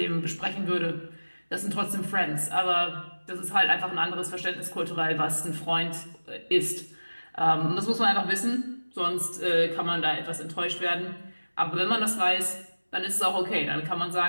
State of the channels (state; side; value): inverted; both; correlation -1.00